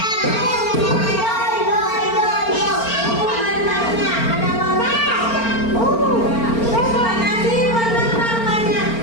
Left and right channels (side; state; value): right; late; 4.4 ms